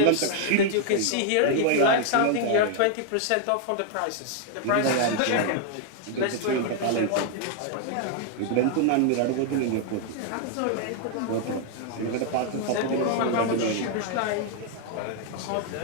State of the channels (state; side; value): different; both; correlation 0.00